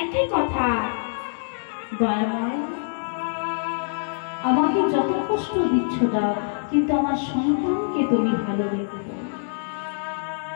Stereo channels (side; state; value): right; silent; digital silence